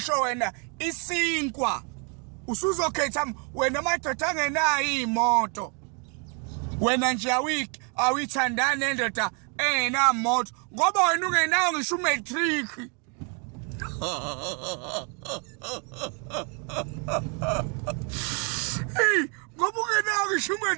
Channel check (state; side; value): quieter; left; 36.3 dB